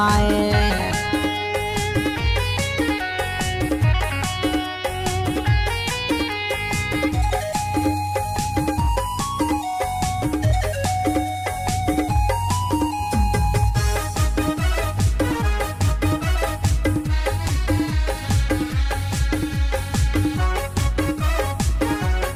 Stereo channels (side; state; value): both; identical; correlation 1.00